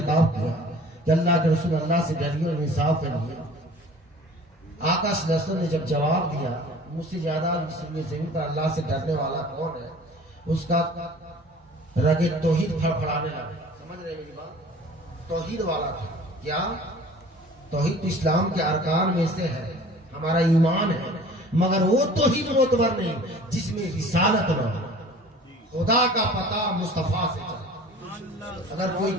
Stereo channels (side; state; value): both; normal; correlation 0.46